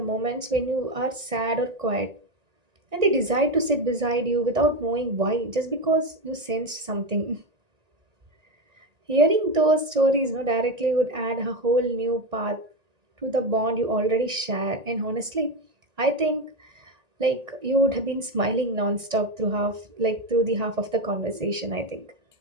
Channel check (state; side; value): late; left; 1.8 ms